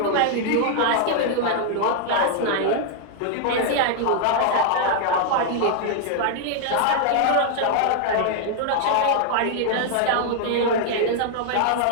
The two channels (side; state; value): both; different; correlation 0.00